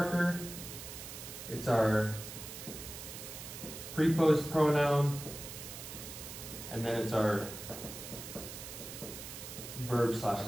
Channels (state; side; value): noise; right; hiss, 10 dB below the sound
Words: It's our preposed pronoun, and then it's our verb /